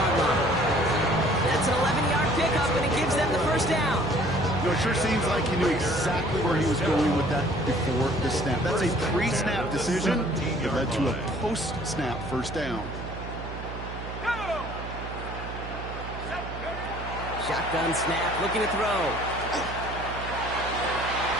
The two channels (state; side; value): noise; right; hum, 9 dB below the sound